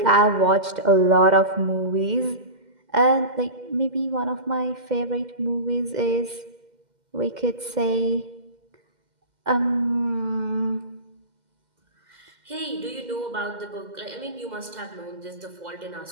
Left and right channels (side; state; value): left; late; 2.1 ms